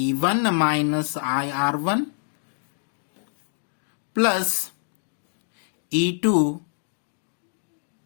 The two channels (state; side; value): silent; right; digital silence